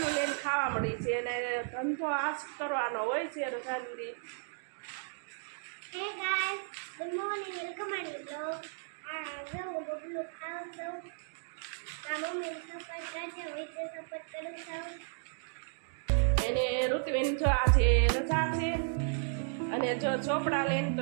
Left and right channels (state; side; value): silent; left; digital silence